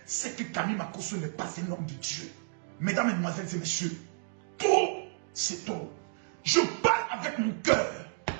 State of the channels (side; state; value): left; silent; digital silence